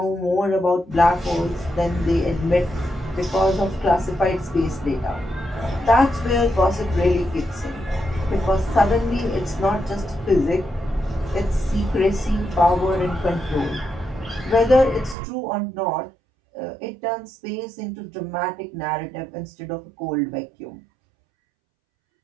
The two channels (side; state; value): left; drops out; at 15.2 s